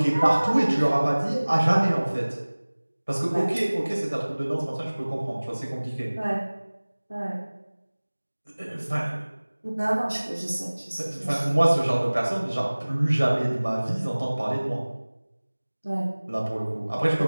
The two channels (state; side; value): inverted; both; correlation -1.00